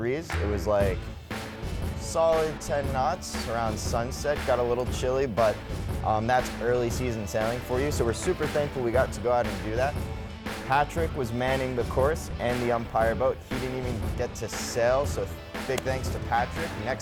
It was like solid 10 knots around sunset. Got a little chilly, but that's early season sailing for you. So we're super thankful we got to go out and do that. Patrick was manning the course and the Umpire boat. He didn't even get to sail, so big thanks to Patrick.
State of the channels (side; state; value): both; identical; correlation 1.00